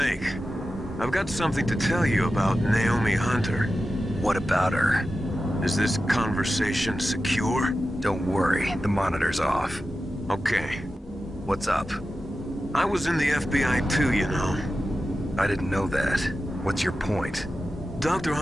I've got something to tell you about Naomi Hunter. What about her? Is this conversation secure? Don't worry, the monitor's off. Okay. What's up? I was in the FBI too, you know. I didn't know that. What's your point? Dr.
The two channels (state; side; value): normal; both; correlation 0.92